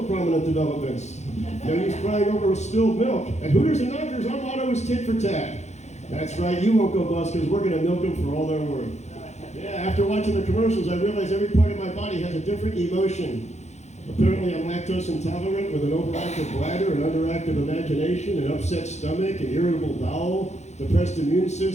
prominent developments. No use crying over spilled milk. At Hooters and Knockers, our motto is tit for tat. That's right, you won't go bust because we're going to milk them for all they're worth. Yeah, after watching the commercials, I realized every part of my body has a different emotion. Apparently, I'm lactose intolerant with an overactive bladder, an underactive imagination, an upset stomach, an irritable bowel, depressed immune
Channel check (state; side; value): late; right; 0.33 ms